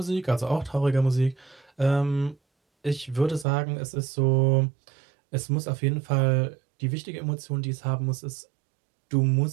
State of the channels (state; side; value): drops out; left; at 3.5 s